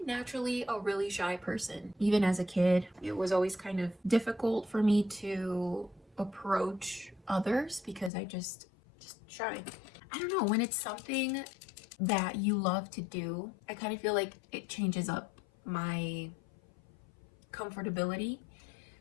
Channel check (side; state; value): right; drops out; at 8.1 s